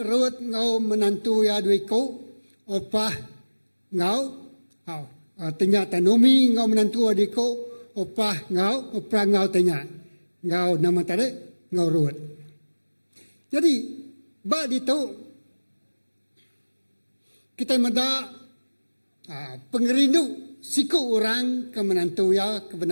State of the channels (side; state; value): both; inverted; correlation -1.00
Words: rut ngau menantu ya duiku. Opah ngau. Ternyata Nomi ngau menantu adiko. opah ngau tanya. Ngau nama tadi ngau Ruth. Jadi bak itu kita meda pengerindu siku orang ke menantu ya ke